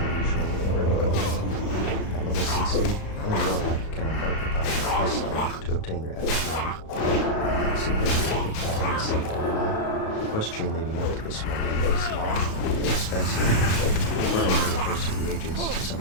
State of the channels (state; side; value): late; right; 36 ms